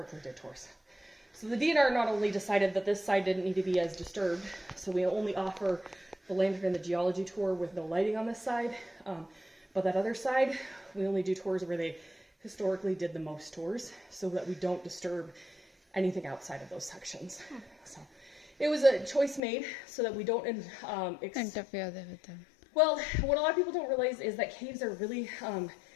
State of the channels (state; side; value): drops out; right; at 19.4 s